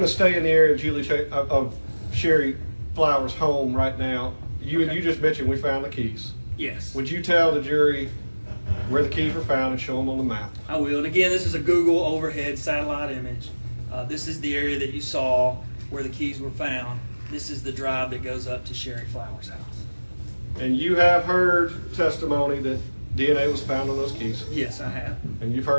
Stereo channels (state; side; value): inverted; both; correlation -1.00